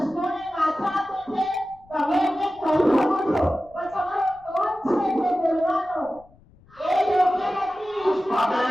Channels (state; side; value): noise; left; rumble, 28 dB below the sound